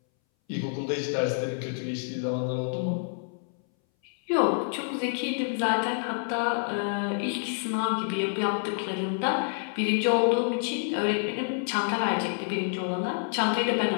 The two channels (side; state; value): right; silent; 59 dB below the other